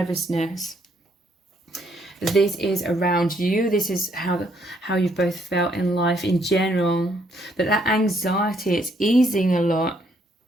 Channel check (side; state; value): both; normal; correlation 0.70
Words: This is around you. This is how you've both felt in life in general. But that anxiety, it's easing a lot